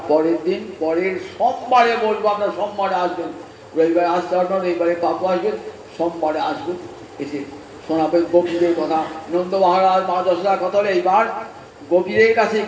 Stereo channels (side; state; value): both; identical; correlation 1.00